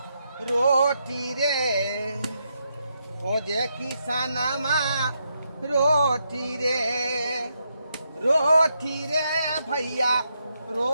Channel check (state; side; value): inverted; both; correlation -0.81